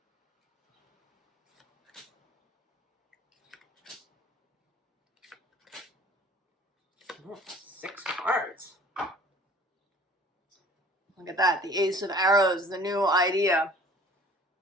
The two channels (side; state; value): both; normal; correlation 0.49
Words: oh, 6 cards. Look at that, the Ace of Arrows, the new idea.